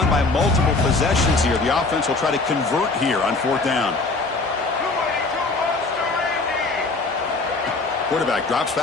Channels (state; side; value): quieter; right; 3.5 dB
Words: by multiple possessions here. The offense will try to convert here on 4th down. Quarterback drops